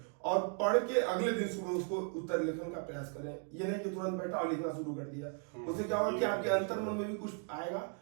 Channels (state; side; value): quieter; left; 38.6 dB